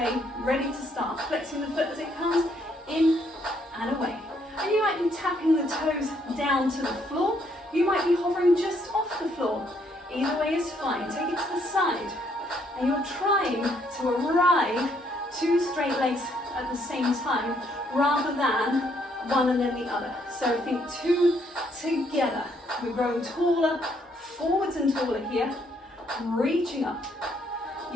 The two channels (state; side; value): normal; both; correlation 0.70